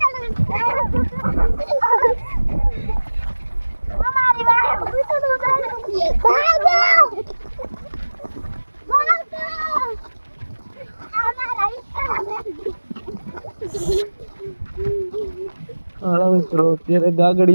હાલો મિત્રો અત્યારે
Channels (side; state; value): both; inverted; correlation -1.00